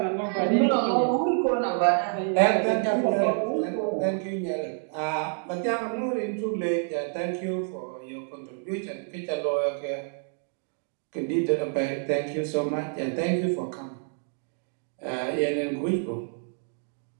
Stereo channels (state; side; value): silent; left; 60 dB below the other